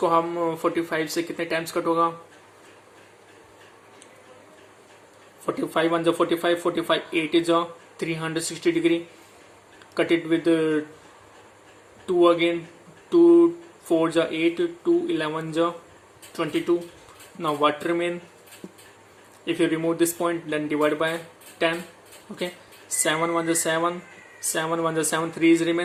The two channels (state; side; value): identical; both; correlation 1.00